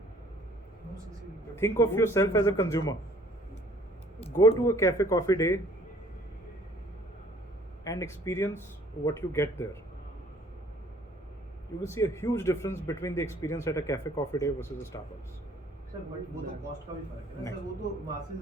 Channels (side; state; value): both; normal; correlation 0.56